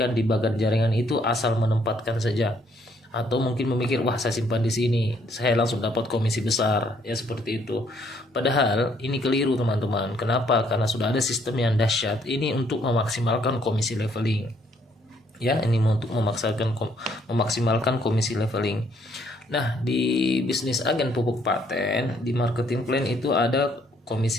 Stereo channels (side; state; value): both; normal; correlation 0.67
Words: di bagan jaringan itu asal menempatkan saja, atau mungkin memikir wah saya simpan di sini saya langsung dapat komisi besar, ya seperti itu. Padahal ini keliru teman-teman. Kenapa? Karena sudah ada sistem yang dahsyat ini untuk memaksimalkan komisi leveling. Ya, ini untuk memaksimalkan komisi leveling. Nah, di bisnis agen pupuk paten, di marketing plan itu ada